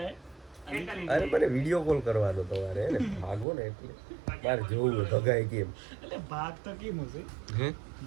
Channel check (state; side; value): drops out; left; at 3.5 s